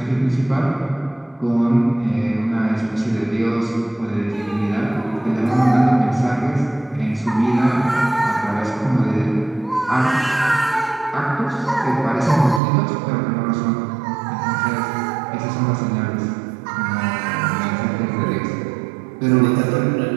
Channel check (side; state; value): left; drops out; at 12.6 s